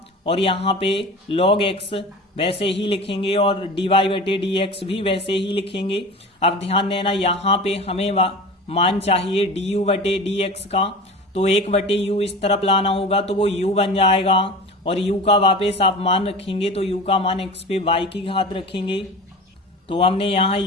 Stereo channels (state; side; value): normal; both; correlation 0.34